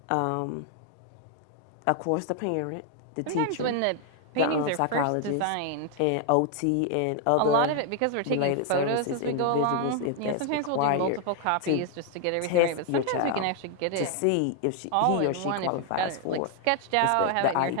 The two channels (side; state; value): both; different; correlation 0.00